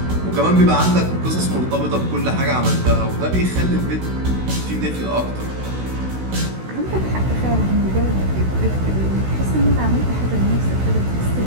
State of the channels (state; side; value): late; left; 16 ms